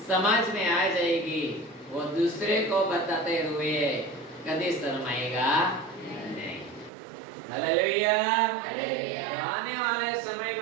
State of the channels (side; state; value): left; drops out; at 6.9 s